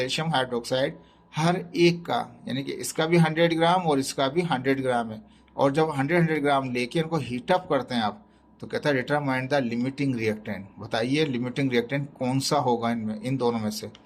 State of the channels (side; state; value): both; identical; correlation 1.00